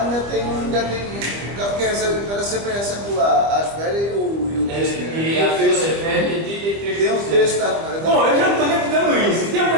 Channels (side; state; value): left; late; 25 ms